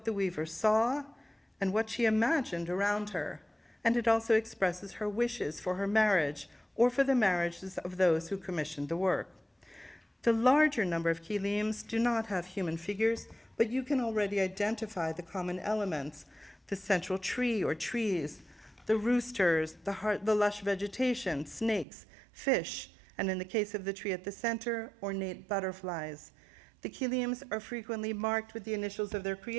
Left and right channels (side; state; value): left; drops out; at 21.9 s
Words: the weaver saw and what she imagined around her. And it also expresses her wishes for her marriage or for the marriages of those who commissioned the work. The larger number of kilims do not have human figures, but you can already identify the common elements: the central tree or trees, the roosters, the lush vegetation, snakes, fish, and in the case of the tree at the center, ornate butterflies. The kilims are frequently marked with the initials of their